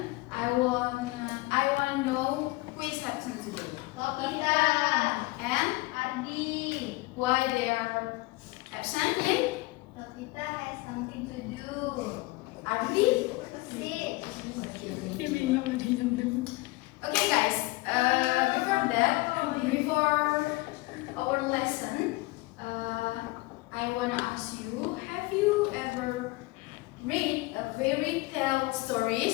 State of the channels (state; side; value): quieter; right; 22.3 dB